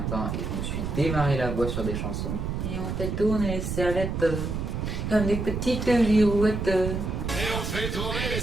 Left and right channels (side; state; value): right; noise; rumble, 3 dB below the sound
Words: et je me suis démarré la voix sur des chansons. Et on fait tourner les serviettes comme des petites girouettes. Et on fait tourner les